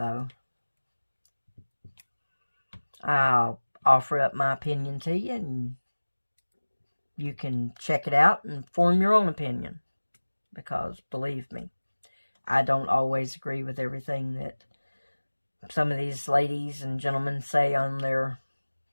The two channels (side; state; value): both; inverted; correlation -1.00